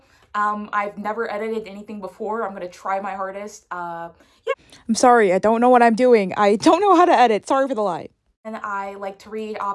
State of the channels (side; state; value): both; identical; correlation 1.00